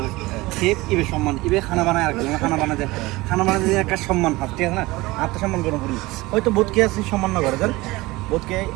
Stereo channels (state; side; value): quieter; left; 20.7 dB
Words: ইবে সম্মান ইবে খানা বানায় আর খানা বানাতে একটা সম্মান হাত ঠিক আছে না আত্মসম্মান গরম করি হয়তো বোধকে আছে সম্মান না করে দেন বোধকে